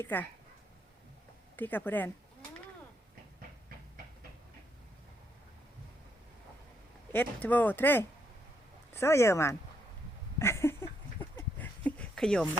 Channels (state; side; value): normal; both; correlation 0.76